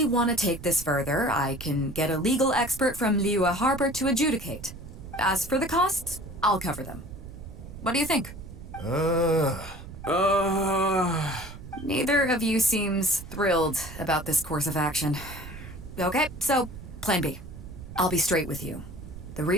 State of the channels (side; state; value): right; noise; rumble, 13 dB below the sound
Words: want to take this further, I can get a legal expert from Liyue Harbor to adjudicate. As for the costs, I'll cover them. What do you think? Neither of you seems thrilled about this course of action. Okay, so plan B. I'll be straight with you. The